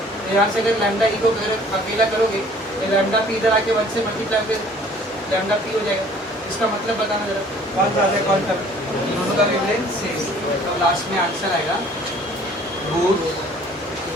तो यहाँ से अगर लैम्डा ई को अगर अकेला करोगे तो लैम्डा पी इधर आके 1 से मल्टीप्लाई फिर लैम्डा पी हो जाएगा, इसका मतलब बताना जरा, कौन ज़्यादा है कौन कम, दोनों का वेवलेंथ सेम, तो लास्ट में आंसर आएगा बोथ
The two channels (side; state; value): both; normal; correlation 0.54